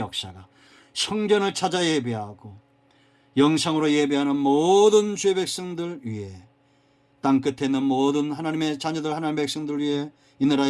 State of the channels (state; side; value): identical; both; correlation 1.00